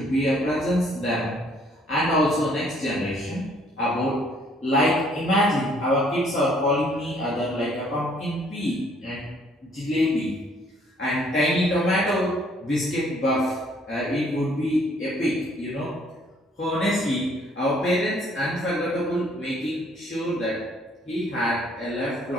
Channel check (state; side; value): normal; both; correlation 0.62